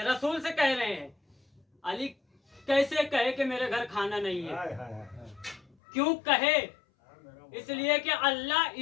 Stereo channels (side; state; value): right; drops out; at 5.8 s